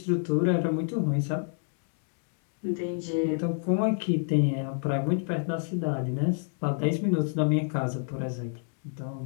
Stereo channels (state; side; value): silent; right; digital silence